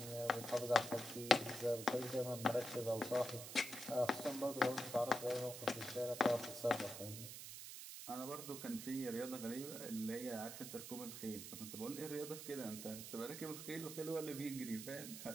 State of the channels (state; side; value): noise; right; hiss, 9 dB below the sound